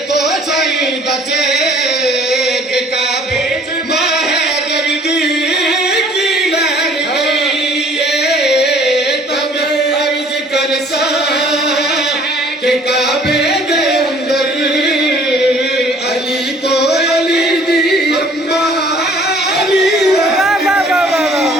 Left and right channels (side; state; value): both; normal; correlation 0.55